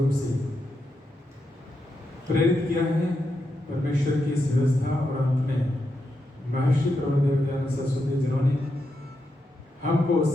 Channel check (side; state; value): both; normal; correlation 0.85